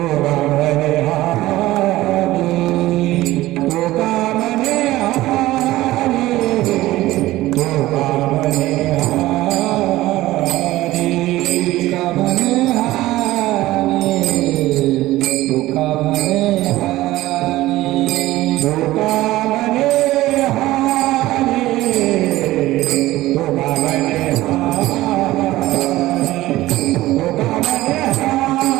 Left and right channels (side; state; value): left; quieter; 16.8 dB